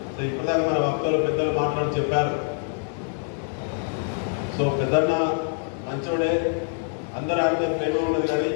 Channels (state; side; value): silent; right; 58 dB below the other